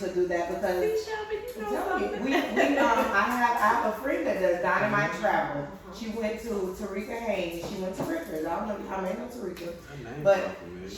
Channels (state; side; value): identical; both; correlation 1.00